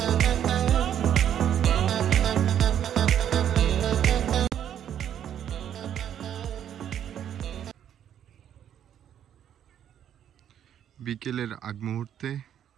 বিকেলের আগ মুহূর্তে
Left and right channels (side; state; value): left; quieter; 9.9 dB